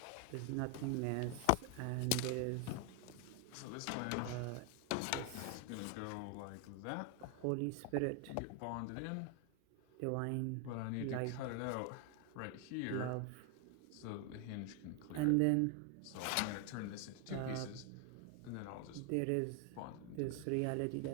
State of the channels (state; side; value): different; both; correlation 0.01